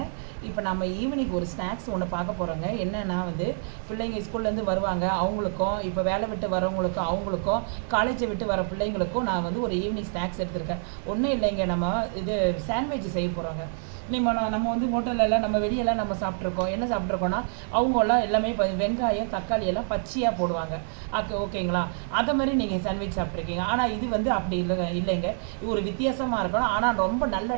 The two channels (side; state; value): left; silent; 57 dB below the other